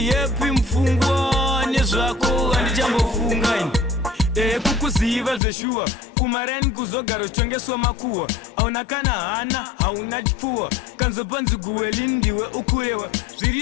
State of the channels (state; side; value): drops out; right; at 5.4 s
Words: yepi mupfungwa nezvako handichambofunga kukuziva zveshuwa kumarani kuzogara uchitengeswa makuhwa hauna kana hana hauna chipfuwa kanzopanzi guweli ndiwe ukurewa